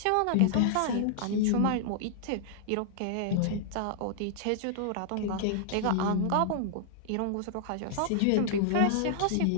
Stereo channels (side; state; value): both; different; correlation -0.01